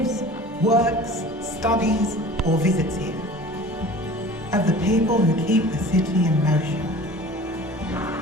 works, studies, or visits here. Of the people who keep the city in motion.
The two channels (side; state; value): both; normal; correlation 0.42